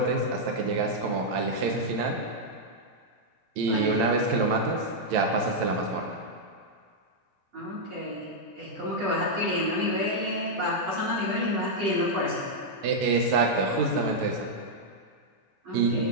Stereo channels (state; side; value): normal; both; correlation -0.05